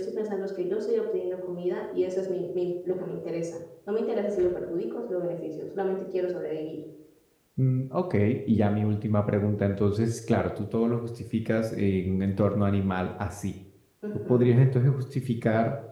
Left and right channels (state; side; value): identical; both; correlation 1.00